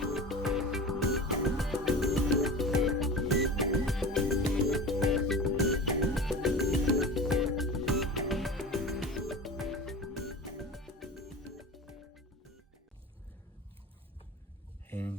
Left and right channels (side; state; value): both; normal; correlation 0.32